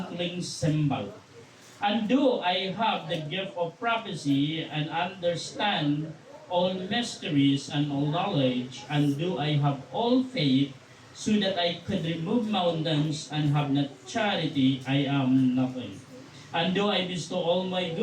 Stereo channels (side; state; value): both; identical; correlation 1.00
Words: cymbal. And do I have the gift of prophecy, and understand all mysteries and all knowledge, and do I have all faith, so that I could remove mountains, and have not charity, I am nothing. And do I bestow all my